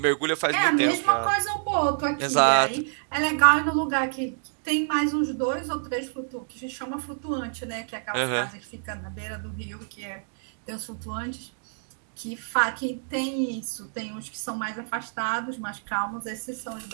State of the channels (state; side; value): silent; left; digital silence